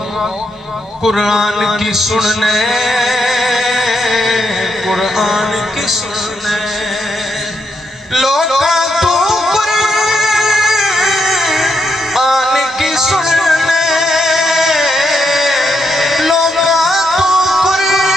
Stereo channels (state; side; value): normal; both; correlation 0.79